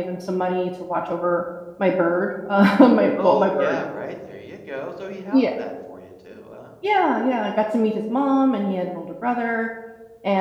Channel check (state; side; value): identical; both; correlation 1.00